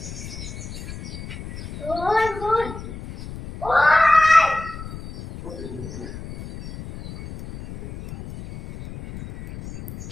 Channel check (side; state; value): left; noise; rumble, 11 dB below the sound